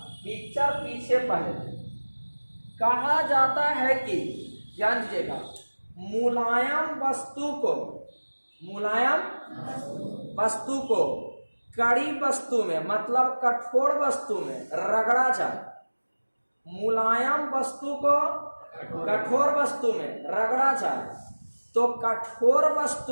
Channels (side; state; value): both; inverted; correlation -1.00